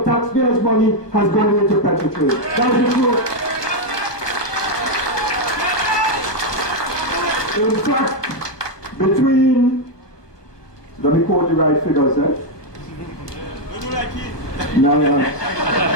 taxpayers' money has gone into PETROTRIN. That's the truth. In fact, between, let me quote the right figures, No,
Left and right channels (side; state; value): right; late; 1.2 ms